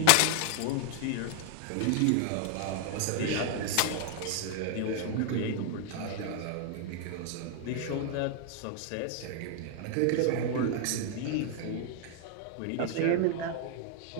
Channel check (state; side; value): different; both; correlation 0.00